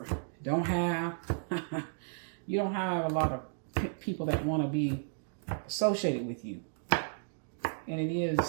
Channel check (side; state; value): left; silent; digital silence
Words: don't have. You don't have a lot of people that want to be associated with you. And it